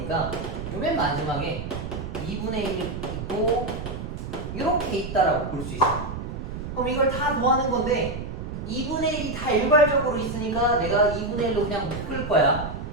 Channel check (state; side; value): noise; right; rumble, 7 dB below the sound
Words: 맨 마지막에 2분의 1이 있고 이렇게 있다라고 볼 수 있어. 그럼 이걸 다 더하는 건데 2분의 1이 다 일괄적으로 있으니까 내가 2분의 1로 그냥 묶을 거야.